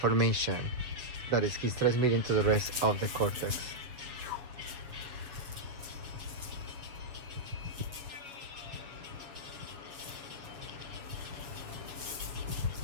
that is he's transmitting to the rest of the cortex.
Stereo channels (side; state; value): left; late; 7.5 ms